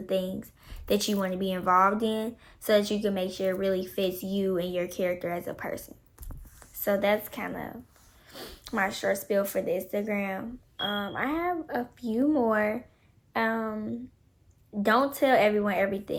things that you want to be involved in, so that you can make sure it really fits you and your character as a person. So that's kind of my short spiel for the Instagram. I have a few more. Don't tell everyone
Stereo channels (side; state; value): both; identical; correlation 1.00